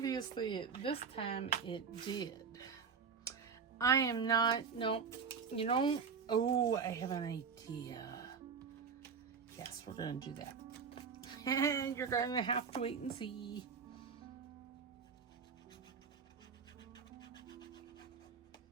this time, it did. I am not... No, you know... Oh, I have an idea. Yes, we're going to do that. And you're going to have to wait and see.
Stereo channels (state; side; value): quieter; left; 6.0 dB